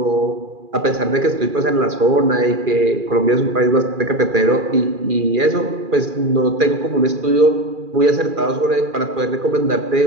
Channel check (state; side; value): late; left; 2.4 ms